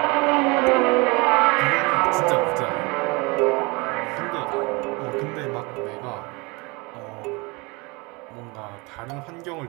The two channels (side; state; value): left; quieter; 27.2 dB